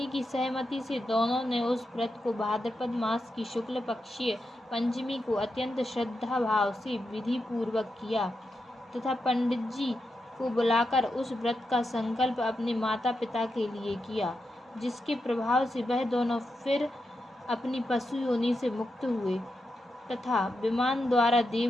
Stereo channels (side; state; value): both; normal; correlation 0.87